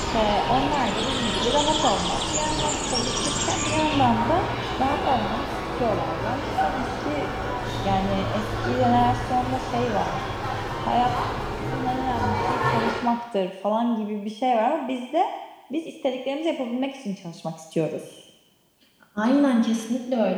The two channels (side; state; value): both; identical; correlation 1.00